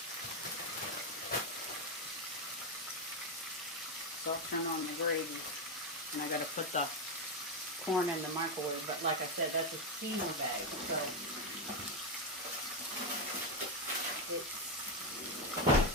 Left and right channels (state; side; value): normal; both; correlation 0.07